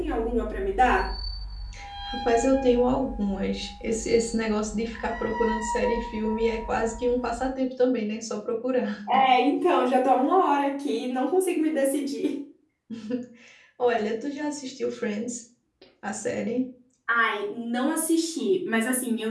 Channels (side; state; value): both; identical; correlation 1.00